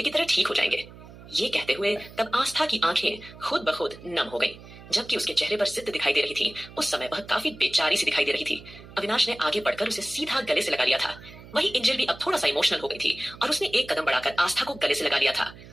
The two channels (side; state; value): right; noise; hum, 18 dB below the sound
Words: की तरह ठीक हो जाएंगे। ये कहते हुए तब आस्था की आंखें खुद ब खुद नम हो गई, जबकि उसके चेहरे पर जिद्द दिखाई दे रही थी। उस समय वह काफी बेचारी सी दिखाई दे रही थी। अविनाश ने आगे बढ़कर उसे सीधा गले से लगा लिया था। वही एंजल भी अब थोड़ा सा इमोशनल हो गई थी और उसने एक कदम बढ़ाकर आस्था को गले से लगा लिया था।